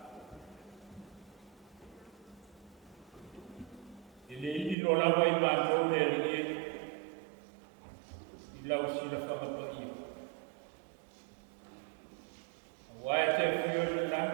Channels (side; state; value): left; drops out; at 4.8 s